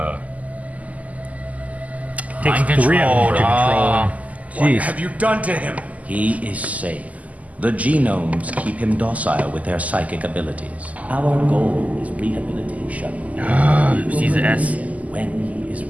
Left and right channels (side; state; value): left; late; 0.074 ms